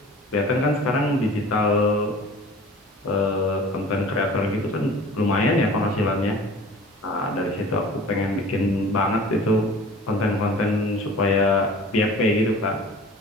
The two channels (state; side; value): normal; both; correlation 0.44